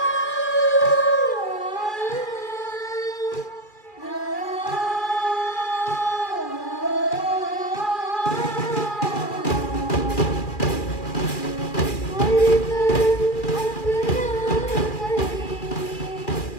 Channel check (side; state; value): right; late; 2.4 ms